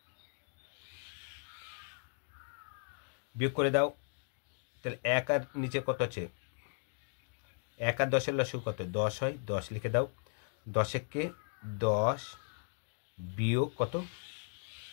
বিয়োগ করে দাও। তাহলে 1 আর নিচে কত আছে? 1 আর 10-এর লসাগু কত? 10 হয়, 10 লিখে দাও। 10 কে 10 বিয়োগ কত?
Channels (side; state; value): right; silent; 53 dB below the other